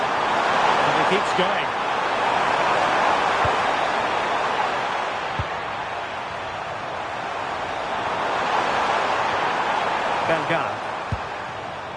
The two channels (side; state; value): both; identical; correlation 1.00